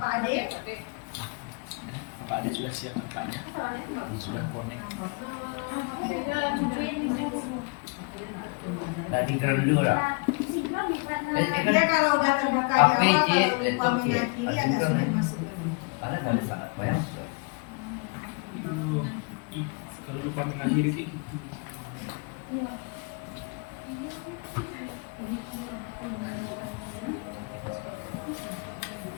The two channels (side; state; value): right; quieter; 31.9 dB